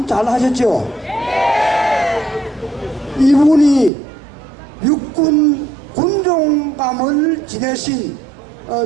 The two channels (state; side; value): drops out; left; at 3.9 s